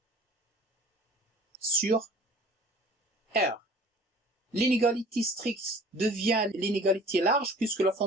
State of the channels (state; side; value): normal; both; correlation 0.47